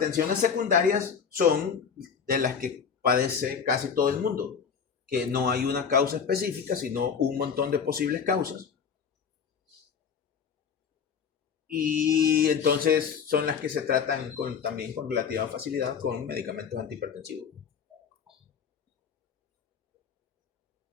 secundarias son de las que padece casi todo el mundo, que no hay una causa específica, sino un montón de posibles causas. Y entonces son las que se tratan también con relativa facilidad con medicamentos antihipertensivos.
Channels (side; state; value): right; quieter; 6.7 dB